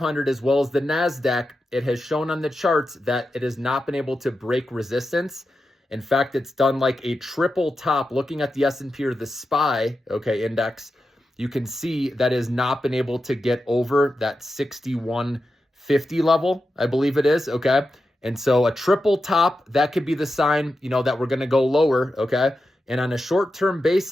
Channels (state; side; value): normal; both; correlation 0.90